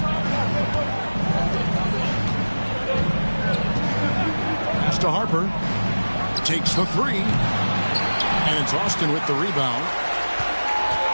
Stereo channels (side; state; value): both; inverted; correlation -1.00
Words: Pass to Harper. Takes the 3. And it's Austin with the rebound.